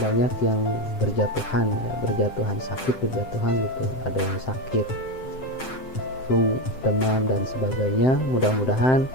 yang berjatuhan sakit gitu. Ada yang sakit flu, demam dan sebagainya. Mudah-mudahan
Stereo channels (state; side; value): late; right; 7.7 ms